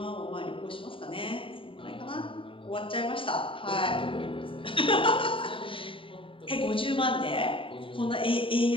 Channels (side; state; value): right; late; 0.25 ms